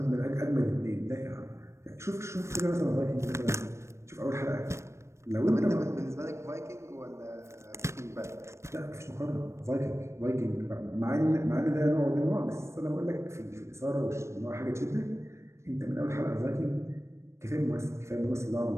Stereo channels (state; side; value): late; left; 0.13 ms